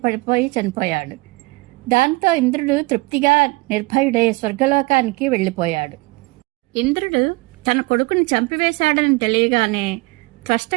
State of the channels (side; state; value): left; quieter; 24.1 dB